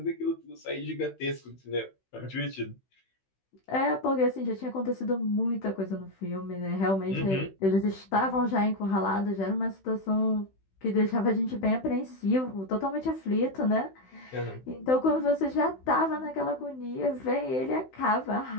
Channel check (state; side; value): late; right; 16 ms